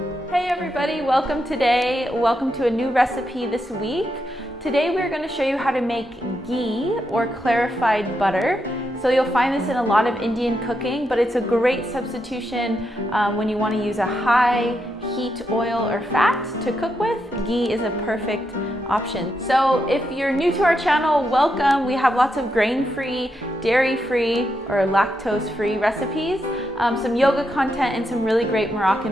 Hey everybody, welcome to a new recipe this week. Today we're going to show you how to make ghee or clarified butter. So you'll find this in a lot of Indian cooking, but it's a great substitution when you want to use a high heat oil or fat to cook with. Ghee is a perfect option. So if you're new to our channel, welcome. We have lots of grain-free, dairy-free, or lactose-free recipes, some yoga content, and some really great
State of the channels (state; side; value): normal; both; correlation 0.83